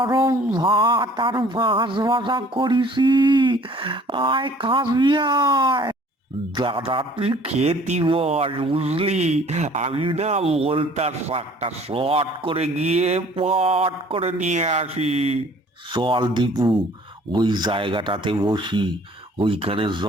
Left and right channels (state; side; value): normal; both; correlation 0.53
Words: ভাত আর মাছ ভাজা করেছি। আয় খাবি আয়। দাদা, তুই খেতি বস, বুঝলি? আমি না বলতার শাকটা শর্ট করে গিয়ে পট করে নিয়ে আসি। চল দীপু, ওই জায়গাটাতে বসি, ওইখানে